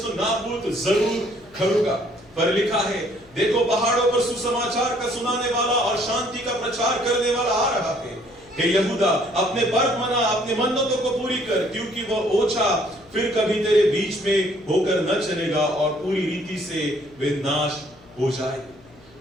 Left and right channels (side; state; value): left; noise; hum, 26 dB below the sound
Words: नाबूद जरूर करूंगा। पर लिखा है, देखो पहाड़ों पर सुसमाचार का सुनाने वाला और शांति का प्रचार करने वाला आ रहा है। हे यहूदा, अपने पर्व मना, अपने मन्नतों को पूरी कर, क्योंकि वह ओछा फिर कभी तेरे बीच में होकर न चलेगा और पूरी रीति से वे नाश हो जाएंगे।